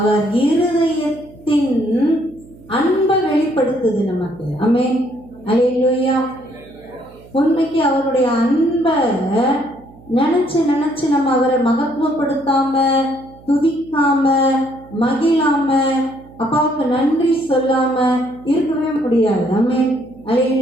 இருதயத்தின் அன்பை வெளிப்படுத்துது நமக்கு. ஆமென். அல்லேலூயா. உண்மைக்கு அவருடைய அன்பை நினைச்சு நினைச்சு நம்ம அவரை மகத்துவப்படுத்தாம, துதிக்காம, மகிழாம, அப்பாவுக்கு நன்றி சொல்லாம இருக்கவே முடியாது. ஆமென்.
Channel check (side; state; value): right; noise; hum, 23 dB below the sound